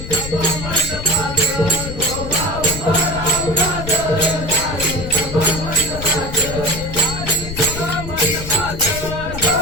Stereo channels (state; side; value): noise; left; rumble, 8 dB below the sound